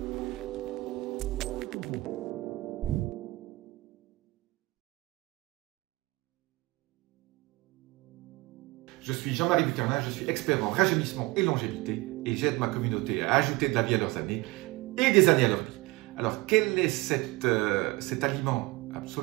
Je suis Jean-Marie Bucarnin, je suis expert en rajeunissement et longévité et j'aide ma communauté à ajouter de la vie à leurs années et des années à leur vie. Alors, quel est cet aliment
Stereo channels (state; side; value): quieter; left; 22.4 dB